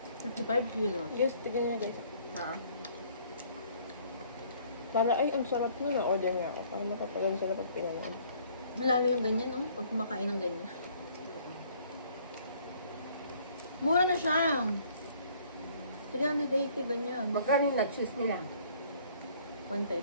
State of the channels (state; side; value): inverted; both; correlation -0.59